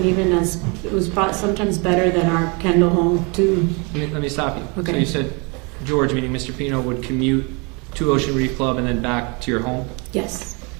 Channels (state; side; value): quieter; left; 31.3 dB